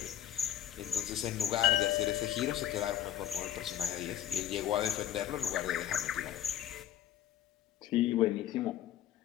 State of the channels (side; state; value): right; quieter; 11.7 dB